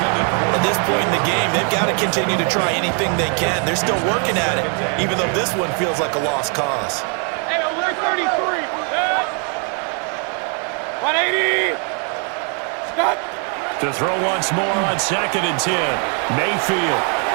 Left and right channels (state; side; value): quieter; left; 39.6 dB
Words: At this point in the game, they've got to continue to try anything they can. They're still working at it, even though this one feels like a lost cause. 180. Stop. To throw once more on 2nd and 10. Mayfield.